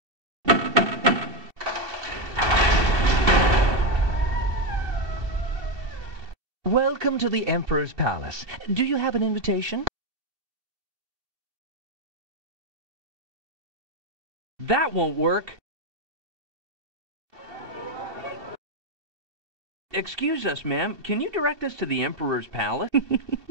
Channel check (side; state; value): left; late; 2.7 ms